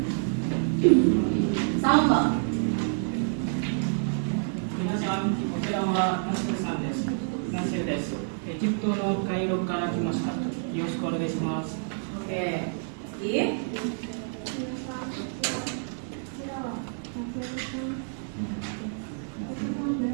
Sambal. 皆さん、こちらはナセルさんです。ナセルです。エジプトのカイロから来ました。よろしくお願いします。 Oke. Gig.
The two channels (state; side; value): silent; left; digital silence